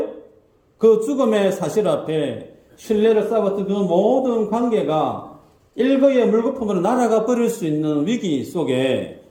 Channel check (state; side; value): identical; both; correlation 1.00